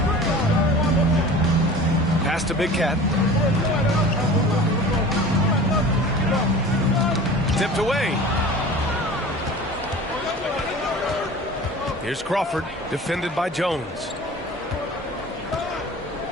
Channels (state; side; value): normal; both; correlation 0.39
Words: Pass to Big Cat. Tipped away. Here's Crawford, defended by Jones.